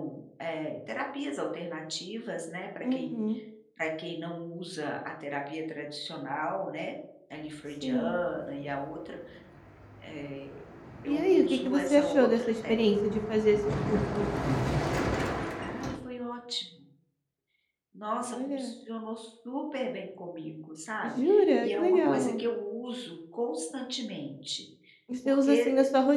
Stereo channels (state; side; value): identical; both; correlation 1.00